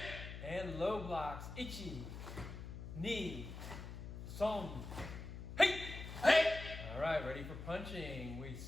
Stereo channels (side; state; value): left; noise; hum, 9 dB below the sound